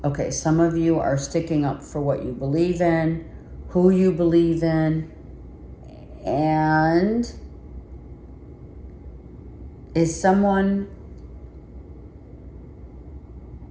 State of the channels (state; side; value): identical; both; correlation 1.00